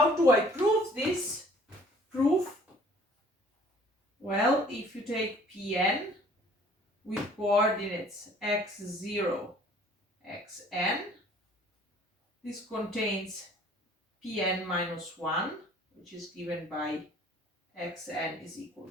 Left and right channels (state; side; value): normal; both; correlation 0.55